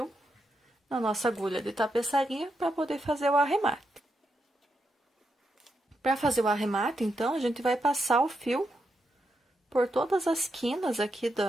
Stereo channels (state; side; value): normal; both; correlation 0.83